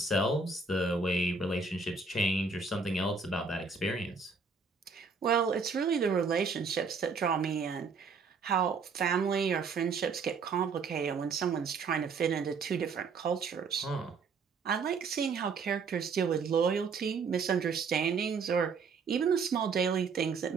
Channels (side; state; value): left; quieter; 4.9 dB